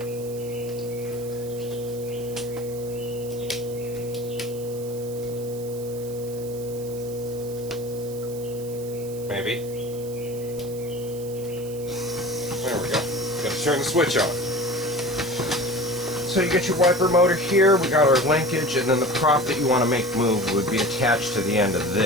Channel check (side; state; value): right; noise; hiss, 17 dB below the sound